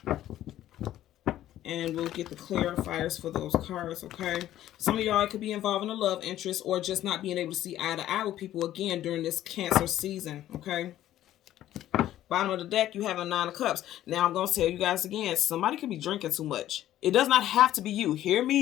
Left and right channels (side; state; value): right; quieter; 12.9 dB